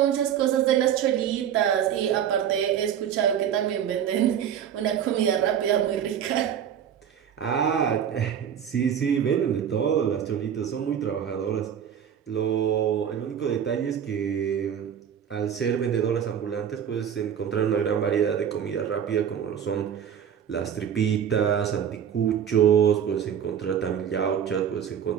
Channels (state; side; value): quieter; left; 8.8 dB